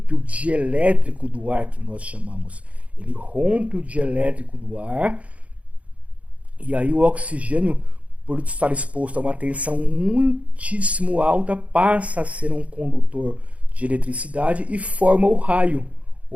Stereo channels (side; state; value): left; late; 0.065 ms